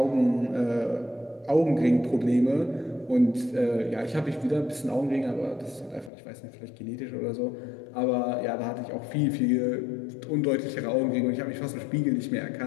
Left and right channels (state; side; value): drops out; right; at 6.1 s